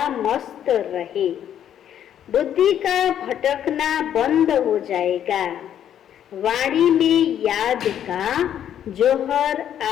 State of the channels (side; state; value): right; quieter; 10.1 dB